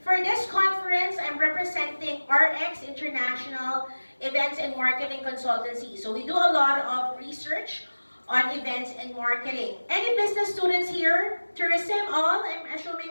for this conference, I'm representing RX International Events and Marketing Consultancy. So we do a lot of research on events and marketing. Any business students here? Tourism, all? I'm assuming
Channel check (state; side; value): inverted; both; correlation -1.00